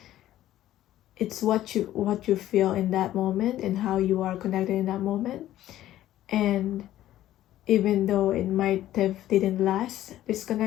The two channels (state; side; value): quieter; right; 13.5 dB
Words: It's what you feel in that moment and how you are connected in that moment. And even though it might have didn't last, this